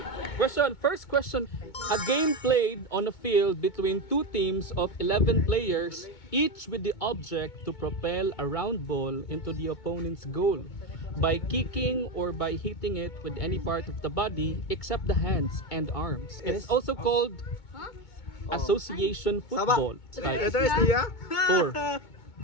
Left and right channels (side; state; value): right; late; 2.2 ms